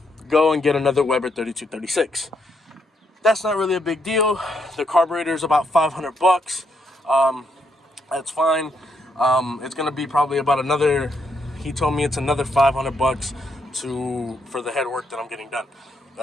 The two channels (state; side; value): normal; both; correlation 0.76